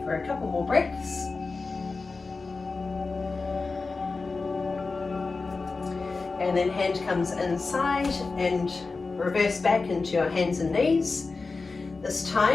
for a couple more breaths. And then hand comes inside and reverse back into your hands and knees. This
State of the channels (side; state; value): right; quieter; 4.0 dB